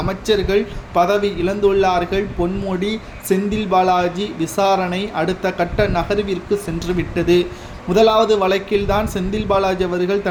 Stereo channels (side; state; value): both; identical; correlation 1.00